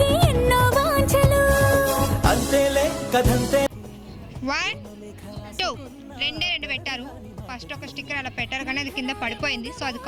ఎన్నో వాంఛలు. అంతేలే కథంతే. 1 2 2 పెట్టారు. ఫస్ట్ ఒక స్టిక్కర్ అలా పెట్టారు కానీ అది కింద పడిపోయింది, సో అది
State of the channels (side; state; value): both; identical; correlation 1.00